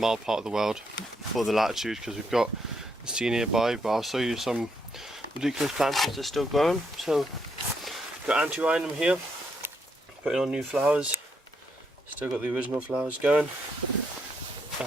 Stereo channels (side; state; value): both; normal; correlation 0.77